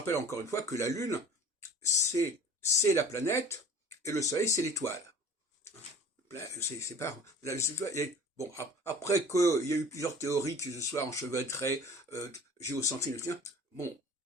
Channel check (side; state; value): both; normal; correlation 0.43